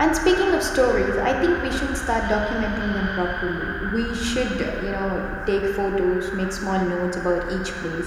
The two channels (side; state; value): both; identical; correlation 1.00